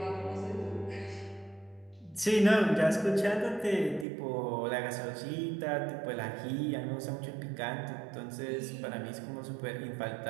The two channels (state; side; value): drops out; left; at 4.0 s